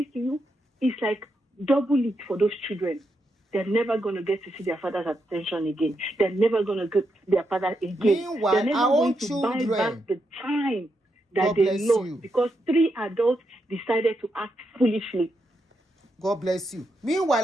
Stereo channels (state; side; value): normal; both; correlation 0.83